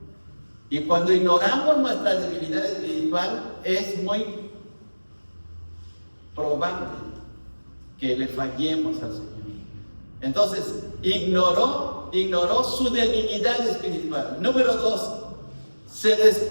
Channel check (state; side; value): inverted; both; correlation -1.00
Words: Y cuando ignoramos nuestra debilidad espiritual, es muy probable que le fallemos al Señor. Entonces, ignoró su debilidad espiritual. Número dos, se